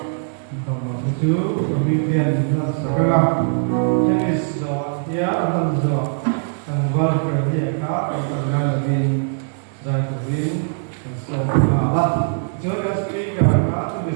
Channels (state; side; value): silent; left; digital silence